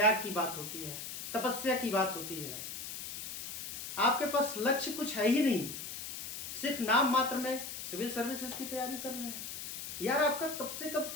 की बात होती है, तपस्या की बात होती है। आपके पास लक्ष्य कुछ है ही नहीं, सिर्फ नाम मात्र में सिविल सर्विसेज की तैयारी कर रहे हैं। यार, आपका कब से कब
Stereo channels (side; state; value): left; noise; hiss, 7 dB below the sound